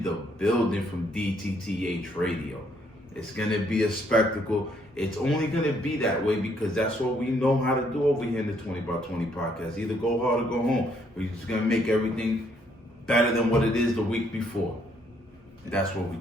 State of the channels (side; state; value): both; normal; correlation 0.69